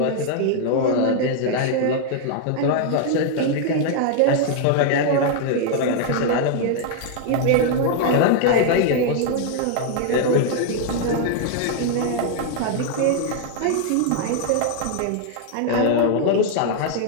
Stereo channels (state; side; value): different; both; correlation 0.00